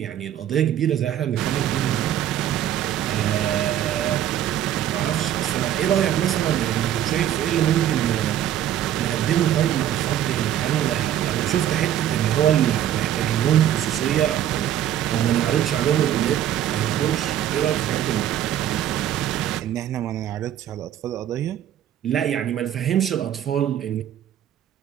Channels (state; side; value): quieter; left; 11.2 dB